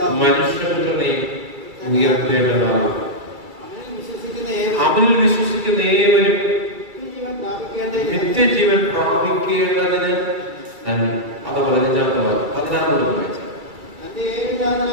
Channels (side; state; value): left; late; 2.3 ms